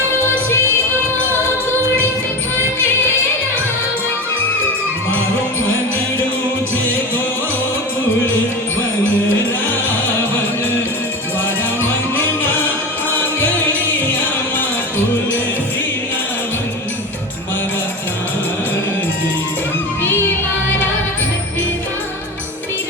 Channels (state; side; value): normal; both; correlation 0.25